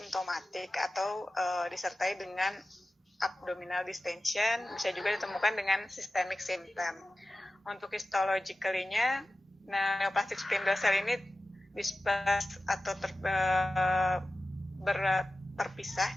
atau disertai dengan abdominal distension, bisa juga ditemukan dengan systemic symptom. Untuk histologically-nya, neoplastic spindle cell ini dispersed atau terpisah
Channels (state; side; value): normal; both; correlation 0.95